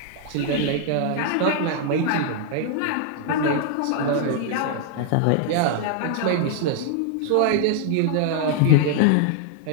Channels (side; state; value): both; different; correlation 0.00